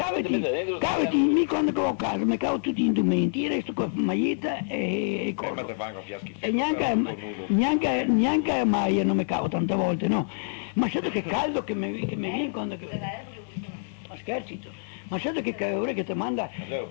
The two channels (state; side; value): silent; right; 60 dB below the other